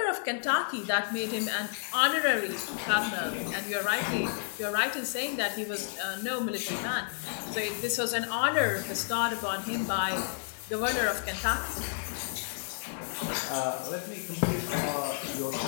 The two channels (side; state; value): right; silent; digital silence